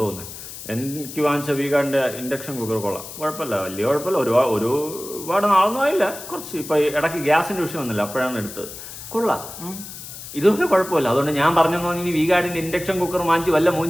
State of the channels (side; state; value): left; noise; hiss, 12 dB below the sound